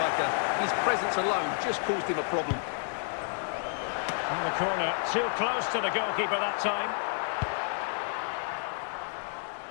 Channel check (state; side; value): silent; right; 58 dB below the other